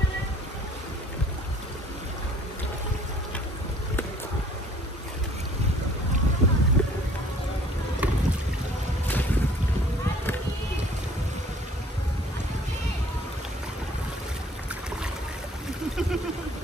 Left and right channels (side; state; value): both; normal; correlation 0.56